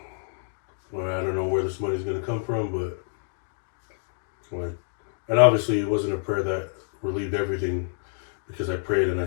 well, I don't know where this money's going to come from, but like, and obviously it wasn't a prayer that relieved everything, because I prayed and I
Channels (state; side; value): silent; right; 58 dB below the other